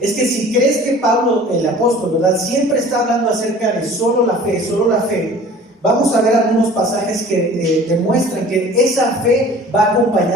es que si crees que Pablo, el apóstol, ¿verdad?, siempre está hablando acerca de solo la fe, vamos a ver algunos pasajes que demuestran que esa fe va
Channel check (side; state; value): both; normal; correlation 0.46